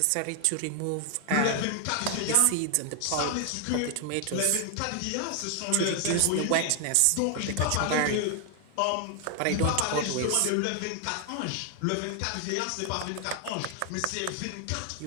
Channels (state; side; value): different; both; correlation 0.00